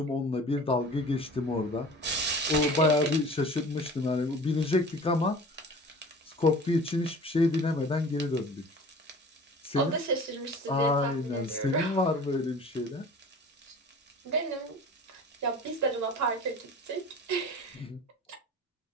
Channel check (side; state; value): both; normal; correlation 0.42